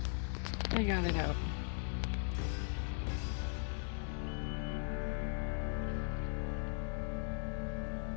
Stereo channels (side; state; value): right; silent; 52 dB below the other